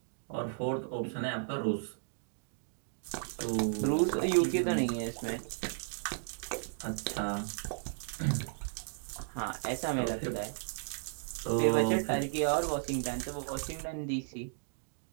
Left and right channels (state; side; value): silent; left; digital silence